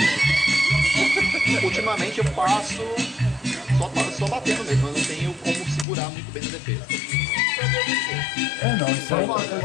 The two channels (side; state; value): right; drops out; at 5.9 s